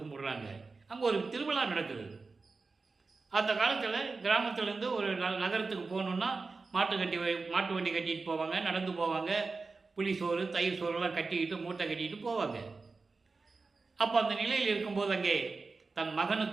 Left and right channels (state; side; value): quieter; left; 4.1 dB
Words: கும்பிடுறாங்க. அங்கே ஒரு திருவிழா நடக்குது. அந்த காலத்தில் கிராமத்திலேருந்து ஒரு நகரத்துக்கு போகணுன்னா மாட்டு வண்டி கட்டிட்டு போவாங்க, நடந்து போவாங்க. புளி சோறு தயிர் சோறுலாம் கட்டிக்கிட்டு மூட்டை கட்டிக்கிட்டு போவாங்க. அப்போ அந்த நிலையில் இருக்கும்போது அங்கே தன்